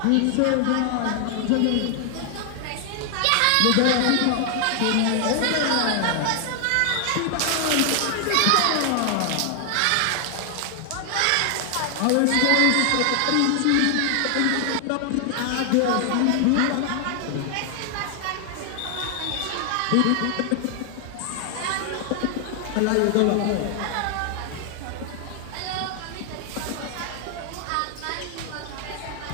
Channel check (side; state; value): both; different; correlation 0.00